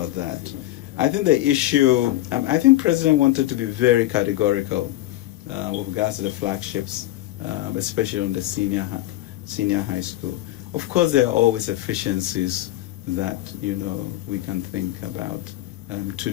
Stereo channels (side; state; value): right; quieter; 15.5 dB